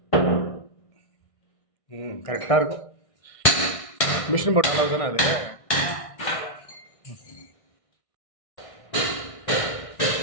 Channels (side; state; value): right; late; 1.6 ms